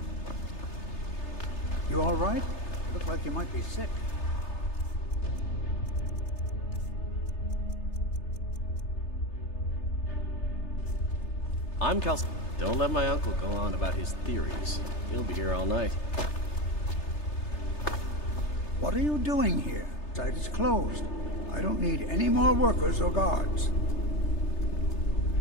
You all right? Look like you might be sick. I'm Cal. Don't let my uncle go on about his theories. He'll be here all night. What are you doing here? Site is closed. I don't need any more workers or guards.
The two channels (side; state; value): right; late; 3.3 ms